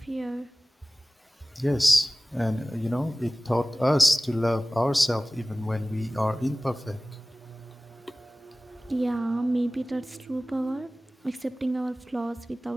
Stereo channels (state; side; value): normal; both; correlation 0.98